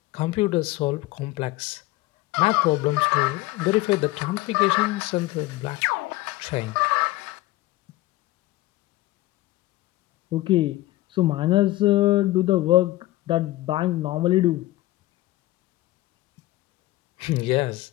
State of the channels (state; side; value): quieter; right; 17.6 dB